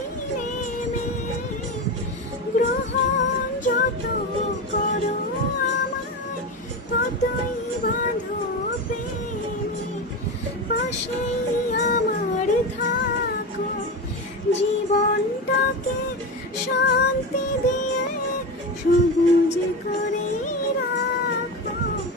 নেমে, গ্রহণ যত করো আমায়, ততই বাঁধো প্রেমে। পাশেই আমার থাকো, জীবনটাকে শান্তি দিয়ে সবুজ করে রাখো।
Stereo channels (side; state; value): both; normal; correlation 0.21